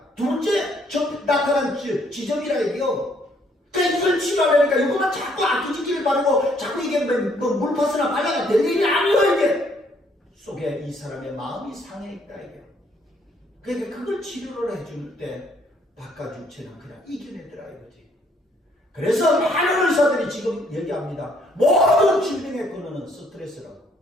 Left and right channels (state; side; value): normal; both; correlation 0.67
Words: 둘째 나타난 지점이라 이게요. 그러니까 이걸 치료하려니까 이거만 자꾸 아끼지기를 바르고 자꾸 이게 뭐 물파스나 발라가 될 일이 아니에요 이게. 속에 이 사람의 마음이 상해 있다 이게. 그러니까 그걸 치료를 해줄 때 바깥 육체는 그냥 이겨내더라 이거지. 그래서 많은 의사들이 지금 얘기합니다. 모든 질병의 근원은 스트레스라고.